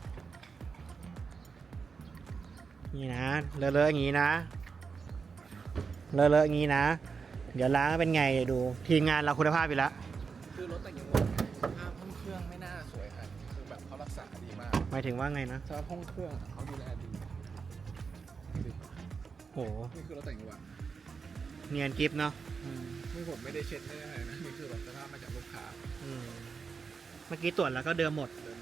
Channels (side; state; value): left; quieter; 5.4 dB